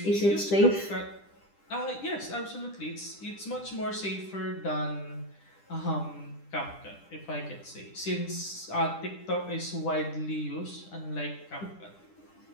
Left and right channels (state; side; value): late; right; 10 ms